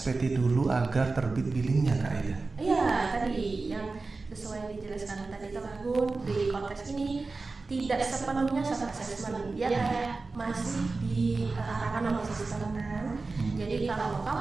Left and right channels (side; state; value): left; quieter; 3.8 dB